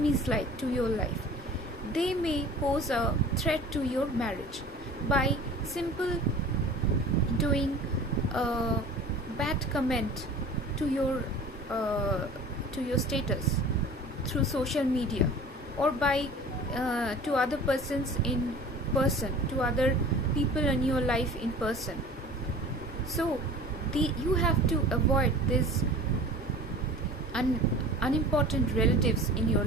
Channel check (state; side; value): normal; both; correlation 0.42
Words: like to your life. They may pose a threat to your marriage by simple doing a bad comment to your status through social media, or by to other persons in person, to other people in your life in person. So you have to avoid this unimportant relatives in your